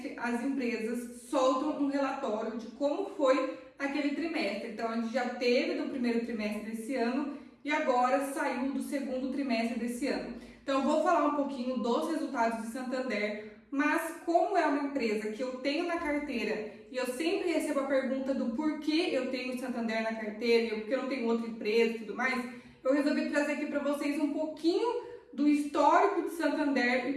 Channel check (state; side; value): identical; both; correlation 1.00